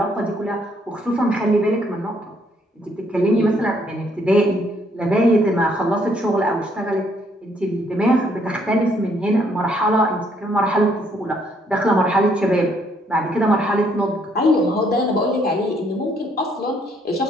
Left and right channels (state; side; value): normal; both; correlation 0.69